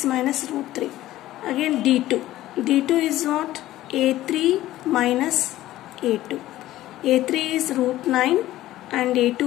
minus root 3. Again D2. D2 is what? A3 minus A2. A3 is root 9 and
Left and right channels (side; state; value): right; quieter; 15.0 dB